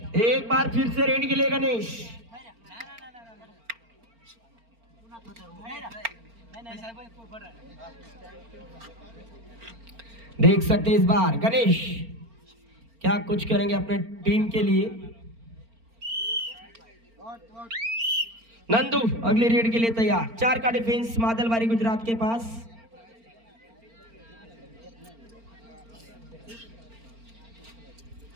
एक बार फिर से रेड के लिए गणेश. देख सकते इस बार गणेश क्या कुछ करेंगे अपने टीम के लिए. नंदू अगली रेड के लिए तैयार. 4 का डिफेंस मादलबारी गुजरात के पास.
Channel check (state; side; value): late; left; 4.4 ms